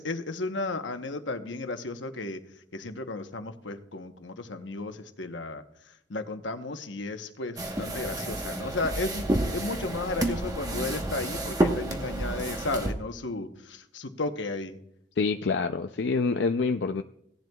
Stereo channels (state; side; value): normal; both; correlation 0.35